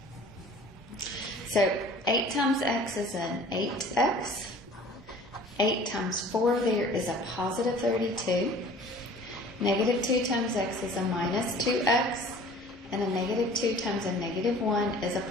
So 8 times x is an 8x. 8 times 4 there is a positive 32. Negative 2 times x is a minus 2x, and a negative 2 times a negative 1 is a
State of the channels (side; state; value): both; normal; correlation 0.47